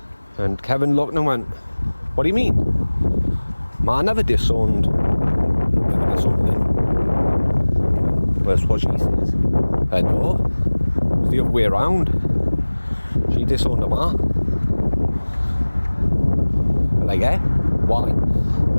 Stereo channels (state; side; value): inverted; both; correlation -1.00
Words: And Kevin looked and went, what do you mean? Ma never disowned him. That's what she says. I know. It's the other way around. She disowned her ma. Like, eh? Why? And